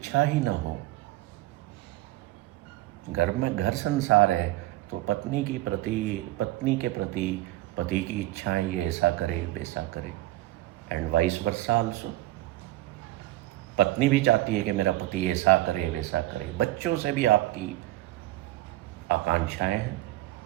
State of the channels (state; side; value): quieter; left; 16.7 dB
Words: ही ना हो? घर में घर संसार है तो पत्नी के प्रति पति की इच्छाएं, ये ऐसा करे वैसा करे, एंड वाइस वर्सा आल्सो। पत्नी भी चाहती है कि मेरा पति ऐसा करे वैसा करे। बच्चों से भी आपकी आकांक्षाएं हैं,